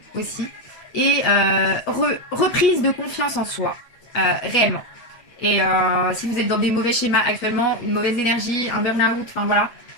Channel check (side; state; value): right; late; 8.5 ms